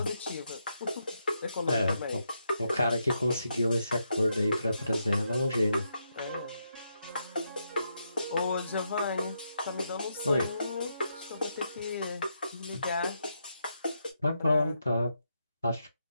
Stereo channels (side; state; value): both; inverted; correlation -0.81